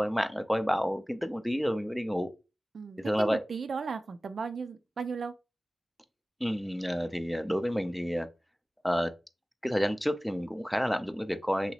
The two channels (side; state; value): both; normal; correlation 0.97